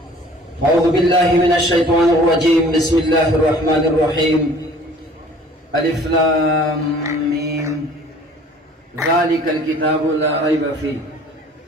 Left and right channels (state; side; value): normal; both; correlation 0.51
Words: أعوذ بالله من الشيطان الرجيم. بسم الله الرحمن الرحيم. ألف لام ميم ذلك الكتاب لا ريب فيه.